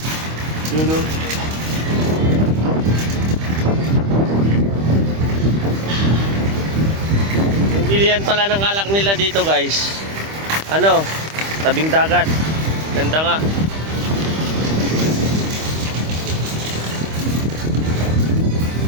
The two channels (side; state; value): left; late; 25 ms